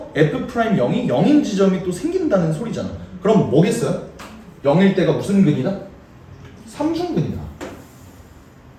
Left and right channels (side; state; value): both; identical; correlation 1.00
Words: F'영이 0인 지점이 또 생긴다는 소리잖아. 그럼 뭐겠어요? 0일 때가 무슨 근이다? 삼중근이다.